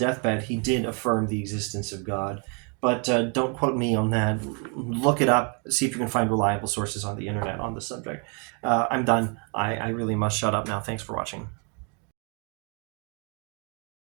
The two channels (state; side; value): quieter; left; 36.7 dB